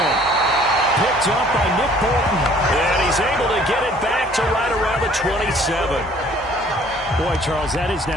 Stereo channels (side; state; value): both; normal; correlation 0.56